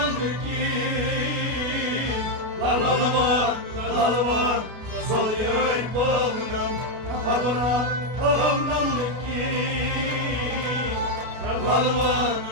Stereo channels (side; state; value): left; late; 32 ms